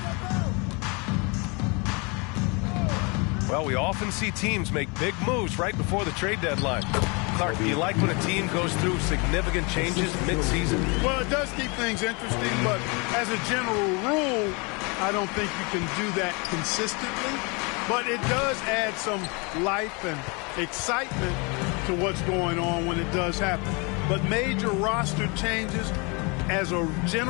Well, we often see teams make big moves right before the trade deadline. Clark, do you like when a team goes through significant changes mid-season? Well, it does keep things interesting, but as a general rule, I don't think you can do that consistently. But it does add some life and excitement to what's going on when it does happen. But major roster changes, as a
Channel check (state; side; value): quieter; right; 30.4 dB